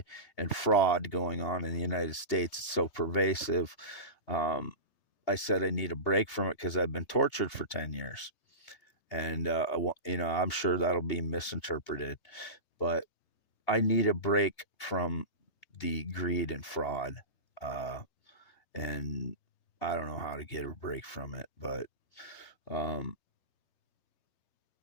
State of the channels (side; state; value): right; late; 3.3 ms